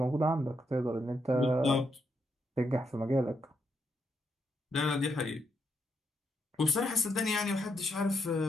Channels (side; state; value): both; normal; correlation 0.80